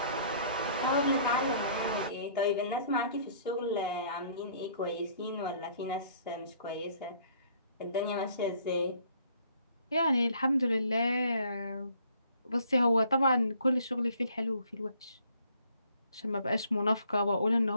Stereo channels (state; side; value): inverted; both; correlation -0.60